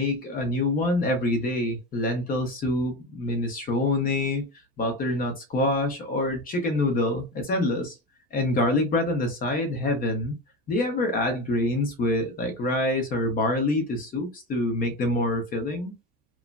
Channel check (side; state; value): both; normal; correlation 0.23